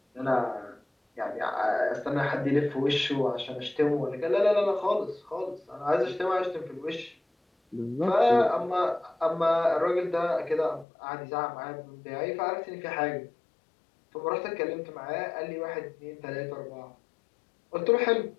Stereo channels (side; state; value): right; drops out; at 10.9 s